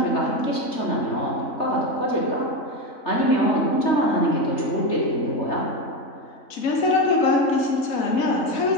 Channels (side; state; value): right; late; 3.3 ms